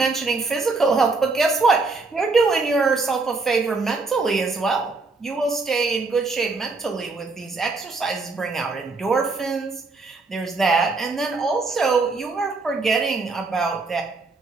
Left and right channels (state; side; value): quieter; left; 3.8 dB